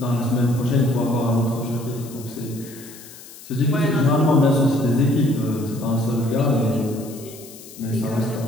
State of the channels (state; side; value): noise; left; hiss, 18 dB below the sound